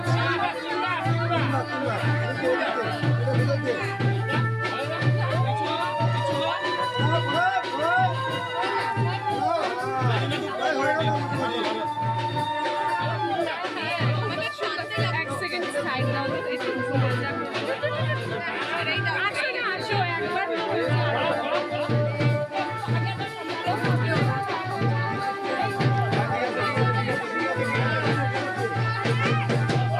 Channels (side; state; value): both; identical; correlation 1.00